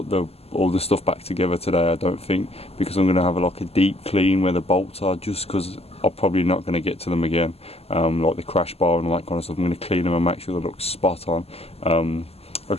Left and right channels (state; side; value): late; right; 0.29 ms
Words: all the stuff back together today, I don't think, because I'm going to have like a deep clean where the bolts are, just because I'm probably not going to get to them again, like the crash bar and all that kind of stuff. I'm going to clean them and make sure they look spot on. Like